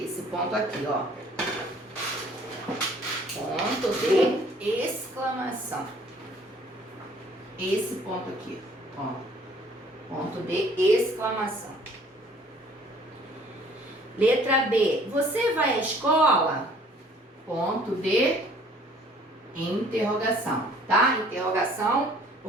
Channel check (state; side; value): normal; both; correlation 0.56